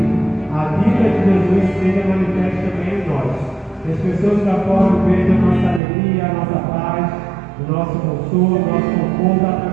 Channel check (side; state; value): left; drops out; at 5.8 s